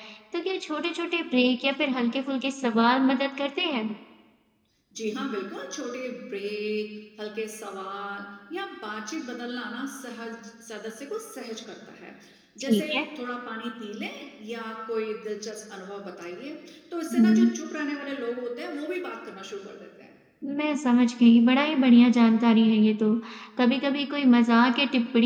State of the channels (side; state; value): both; identical; correlation 1.00